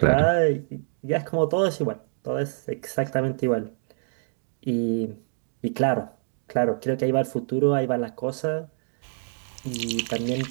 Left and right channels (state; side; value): silent; left; 60 dB below the other